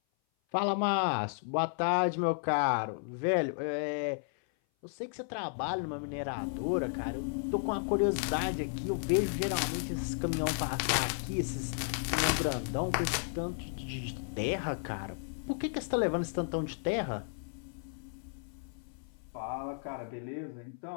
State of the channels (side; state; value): right; silent; 55 dB below the other